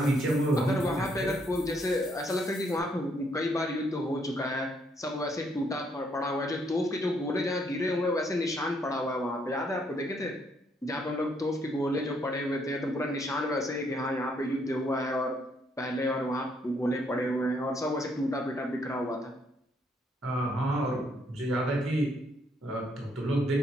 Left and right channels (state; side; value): normal; both; correlation 0.71